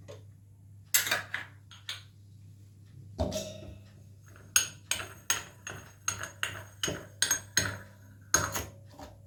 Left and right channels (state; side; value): identical; both; correlation 1.00